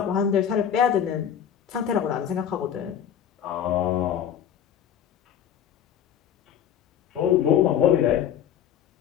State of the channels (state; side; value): quieter; right; 9.3 dB